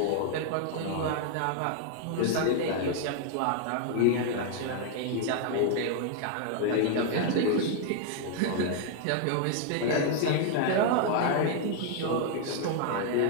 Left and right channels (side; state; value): both; different; correlation 0.00